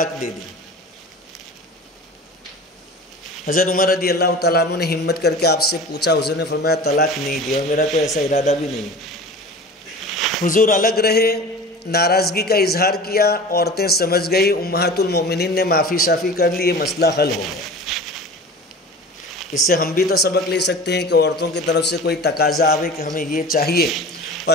دے دی۔ حضرت عمر رضی اللہ تعالیٰ عنہ نے ہمت کر کے آپ سے پوچھا، حضور نے فرمایا طلاق نہیں دیا، اور میرا تو ایسا ارادہ بھی نہیں۔ حضور الگ رہے، ناراضگی کا اظہار کیا، عورتیں سمجھ گئی، امہات المومنین نے معافی شافی کر لی، یہ مسئلہ حل ہو گیا۔ اس سے ہم بھی تو سبق لے سکتے ہیں کہ عورتوں کی طرف سے کوئی تقاضا آوے کہ ہمیں یہ چاہیے، اور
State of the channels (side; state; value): both; normal; correlation 0.37